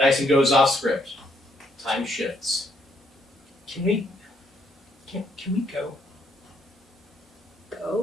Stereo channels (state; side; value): normal; both; correlation 0.72